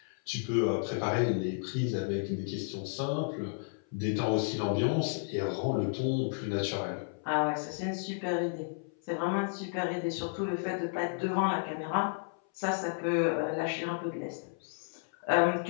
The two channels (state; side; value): silent; right; 56 dB below the other